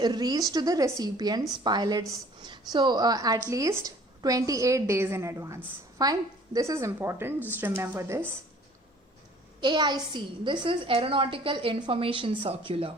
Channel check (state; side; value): normal; both; correlation 0.53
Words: reached to the recipients, pilots, so at least 28 days in advance. Fine, this is important, just remember this. AIC, this is Aeronautical Information Circular.